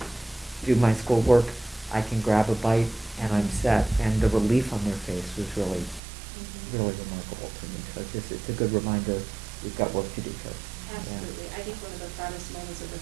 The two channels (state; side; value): drops out; left; at 6.0 s